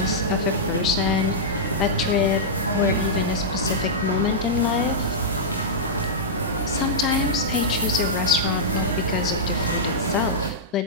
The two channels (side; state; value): both; normal; correlation -0.11